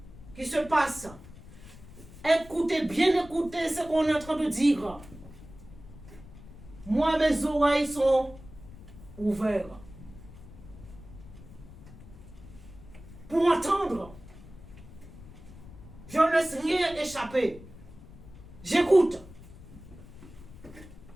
qui se passent. Écoutez, bien écoutez ce qu'on est en train de dire. Moi, mes oreilles sont ouvertes pour entendre. Je ne laisse rien échapper. J'écoute.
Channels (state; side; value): noise; left; rumble, 18 dB below the sound